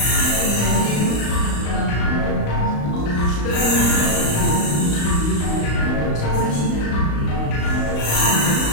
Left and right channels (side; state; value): right; late; 35 ms